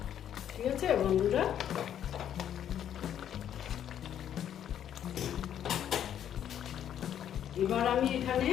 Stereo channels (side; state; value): right; quieter; 10.0 dB